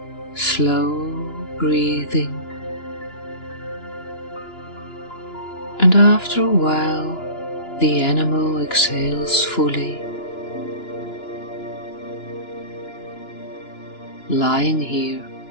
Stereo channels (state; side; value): late; right; 2.9 ms